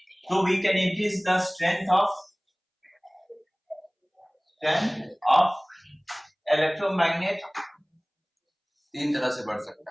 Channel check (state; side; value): identical; both; correlation 1.00